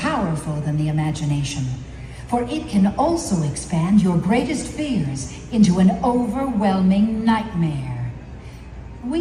than the imagination, for it can also expand your greatest fears into an overwhelming nightmare.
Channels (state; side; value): identical; both; correlation 1.00